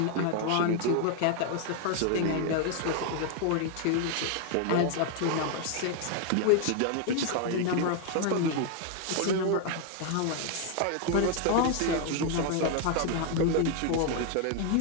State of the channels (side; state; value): both; different; correlation 0.00